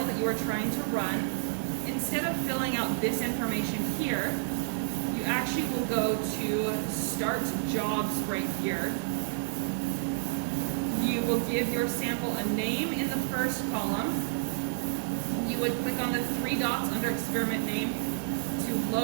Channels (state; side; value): silent; left; digital silence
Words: that you are trying to run, instead of filling out this information here, you actually will go to Start Jobs right here. You will give your sample a name in the first column. You would click on the 3 dots under experiment name to